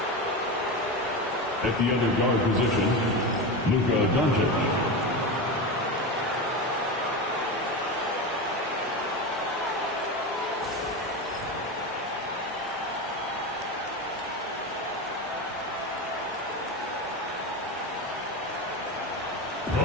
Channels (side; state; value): both; normal; correlation 0.21